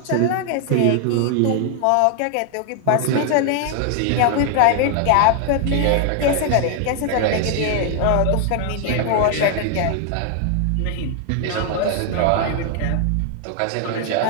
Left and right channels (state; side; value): different; both; correlation 0.00